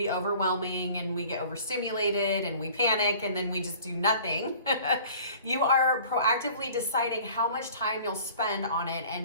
overwhelming and we get overstimulated and we panic and then we just do nothing, you are proactively deciding how much time you'll spend on it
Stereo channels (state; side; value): inverted; both; correlation -0.48